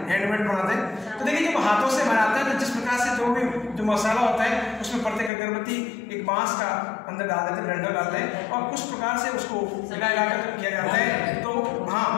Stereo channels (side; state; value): right; drops out; at 5.3 s